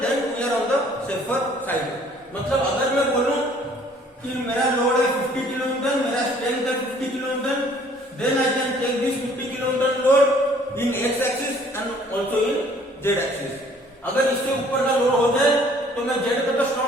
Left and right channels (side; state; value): both; normal; correlation 0.57